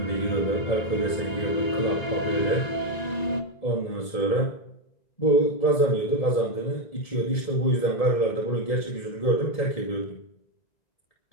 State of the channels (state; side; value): late; right; 1.9 ms